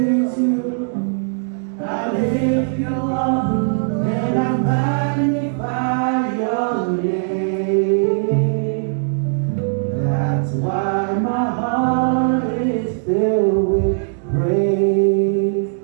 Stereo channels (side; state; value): left; silent; digital silence